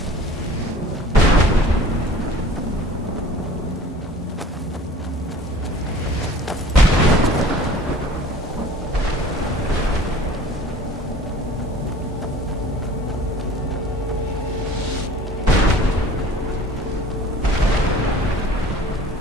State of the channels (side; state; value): both; normal; correlation 0.46